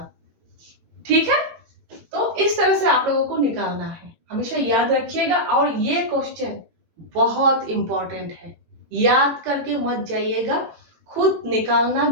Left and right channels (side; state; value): left; late; 18 ms